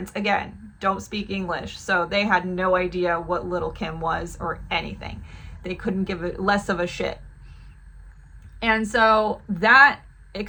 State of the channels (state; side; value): identical; both; correlation 1.00